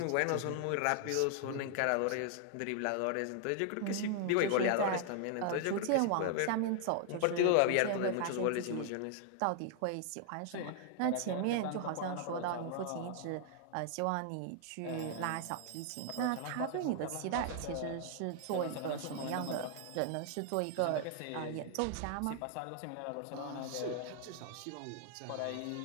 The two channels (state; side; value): different; both; correlation 0.00